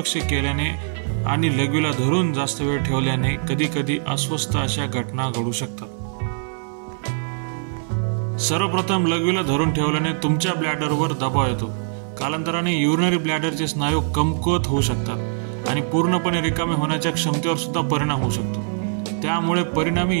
केल्याने आणि लघवीला धरून जास्त वेळ ठेवल्याने कधी कधी अस्वस्थ अशा घटना घडू शकतात। सर्वप्रथम लघवीला धरून ठेवल्याने तुमच्या ब्लॅडरवर दबाव येतो। कालांतराने युरिनरी ब्लॅडरचे स्नायू कमकुवत होऊ शकतात आणि पूर्णपणे रिकामे होण्याच्या क्षमतेवर सुद्धा परिणाम होऊ शकतो। त्यामुळे परिणामी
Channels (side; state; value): left; silent; digital silence